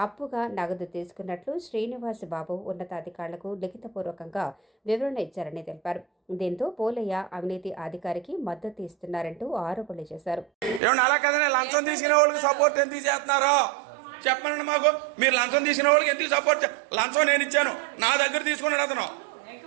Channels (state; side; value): drops out; left; at 10.8 s